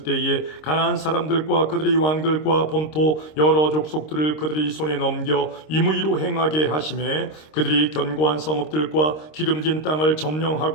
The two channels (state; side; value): late; right; 26 ms